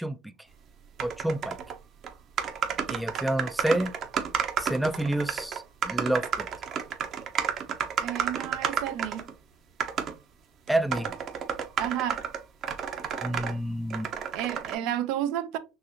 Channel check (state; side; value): quieter; left; 4.5 dB